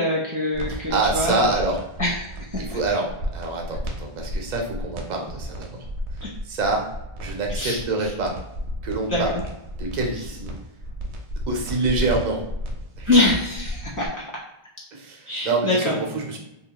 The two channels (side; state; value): left; late; 2.0 ms